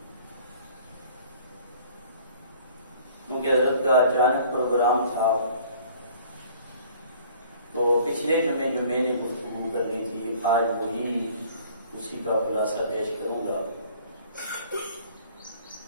کیونکہ حضرت کا اچانک پروگرام تھا تو پچھلے جمعے جو میں نے گفتگو کرنی تھی آج وہی اسی کا خلاصہ پیش کروں گا۔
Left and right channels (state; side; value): inverted; both; correlation -0.53